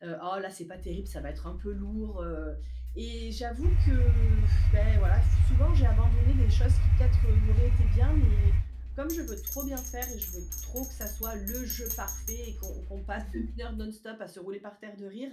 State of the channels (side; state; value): both; identical; correlation 1.00